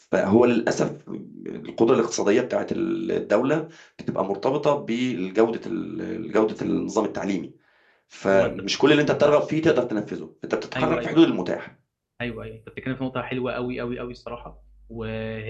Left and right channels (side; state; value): both; identical; correlation 1.00